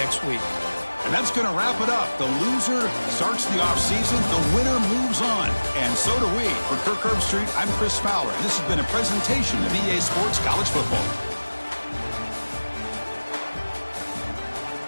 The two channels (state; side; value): inverted; both; correlation -1.00